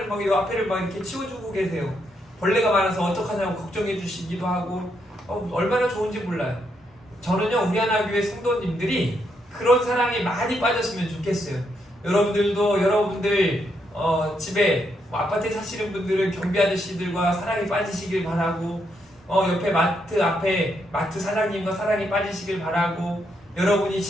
막 이 앞에를 막 이렇게 치워주고 계세요. 벌레가 많아서 어떡하냐고 걱정해 주시기도 하고, 얼마나 좋은지 몰라요. 저는요, 우리 하나 교회 성도님들이 그런 사랑에 많이 빠졌으면 좋겠어요. 여러분들도 여러분들 집에 아파트에 사시는 분들은 경비 아저씨들과 사랑에 빠지시길 바라고, 옆에 마트 사장님과 사랑에 빠지시길 바라고, 여러분이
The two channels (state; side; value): normal; both; correlation 0.78